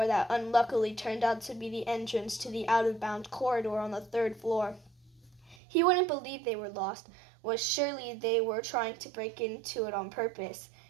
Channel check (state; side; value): drops out; left; at 5.6 s